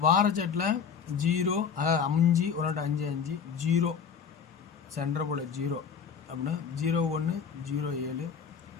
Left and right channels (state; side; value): quieter; right; 6.8 dB